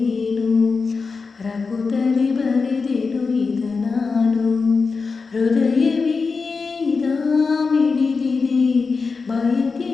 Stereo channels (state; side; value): quieter; right; 4.6 dB